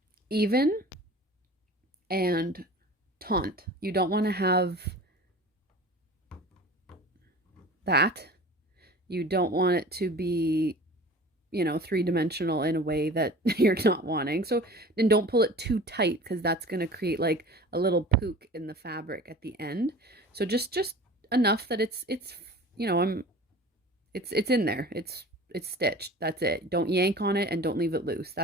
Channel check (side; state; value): both; normal; correlation 0.40